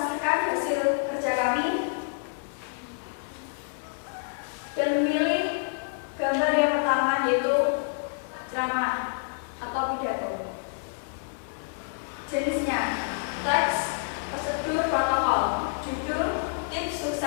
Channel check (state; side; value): silent; right; 56 dB below the other